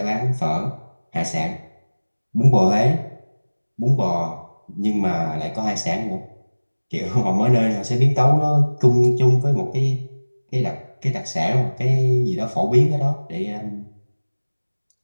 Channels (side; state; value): both; inverted; correlation -1.00